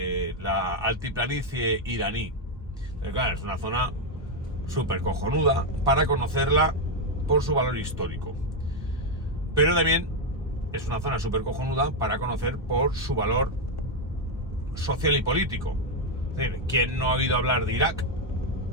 altiplanicie iraní. Pero claro, es una zona súper cojonuda para conocerla por su valor histórico, pero también es una zona súper cojonuda para conocer por su valor social y político. Es decir, ¿quién no ha oído hablar de Irak?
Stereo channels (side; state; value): both; normal; correlation 0.03